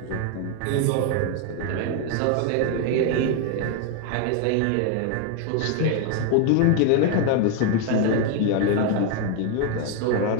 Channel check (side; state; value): both; different; correlation 0.01